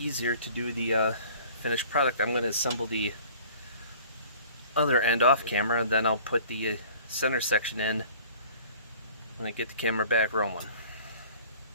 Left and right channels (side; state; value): both; inverted; correlation -0.48